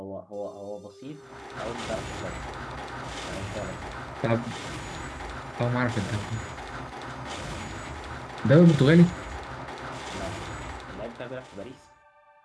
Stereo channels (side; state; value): both; identical; correlation 1.00